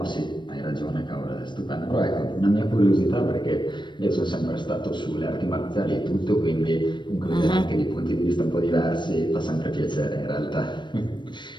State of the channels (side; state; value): right; late; 0.22 ms